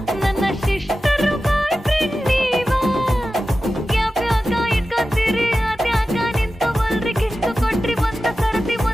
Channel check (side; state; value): both; normal; correlation 0.94